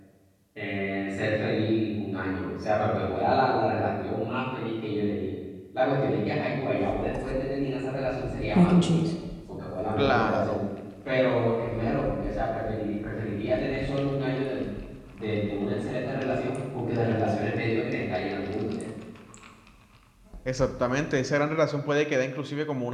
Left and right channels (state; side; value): identical; both; correlation 1.00